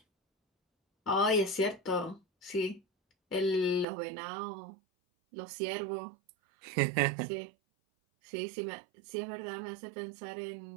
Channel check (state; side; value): drops out; left; at 3.9 s